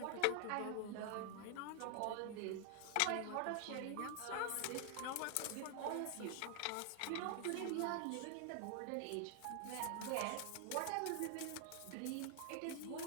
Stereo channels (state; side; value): different; both; correlation 0.00